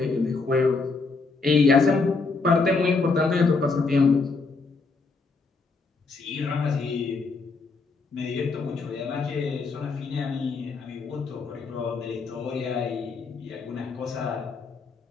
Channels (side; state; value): right; quieter; 4.2 dB